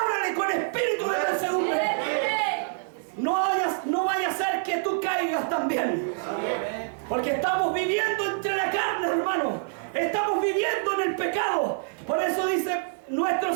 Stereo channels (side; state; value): left; silent; 59 dB below the other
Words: con espíritu de mansedumbre. No vaya a ser que tú caigas también. Porque estamos viviendo entre la carne, hermano. Estamos viviendo en el pecado. Por eso dice nuestro